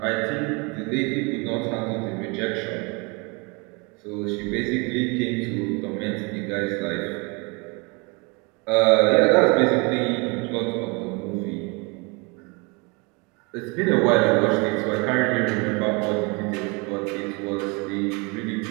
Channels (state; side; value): quieter; left; 29.6 dB